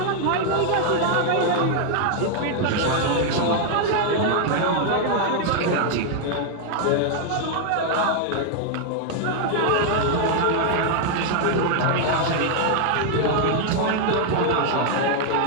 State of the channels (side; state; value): both; different; correlation 0.00